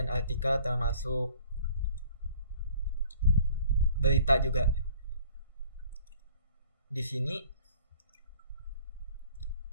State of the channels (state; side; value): inverted; both; correlation -0.53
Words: artikel, termasuk berita juga. Di sini